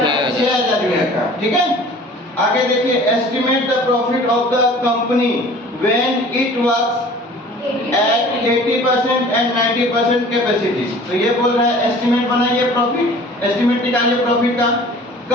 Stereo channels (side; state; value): both; normal; correlation 0.47